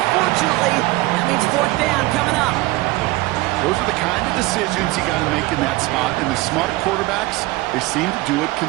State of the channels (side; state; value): left; quieter; 20.2 dB